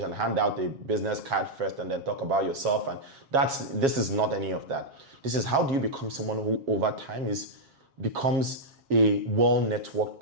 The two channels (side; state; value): left; late; 7.4 ms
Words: hand out a business card first and then talk about yourself, and this is not any of that. This is, how do you become someone who over time becomes a well networked